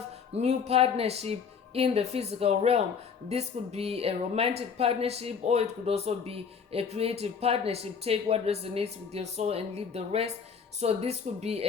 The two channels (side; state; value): right; quieter; 6.3 dB